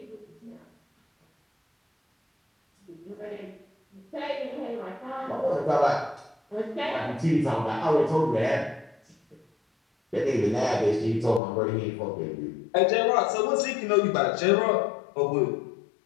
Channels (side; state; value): right; drops out; at 11.4 s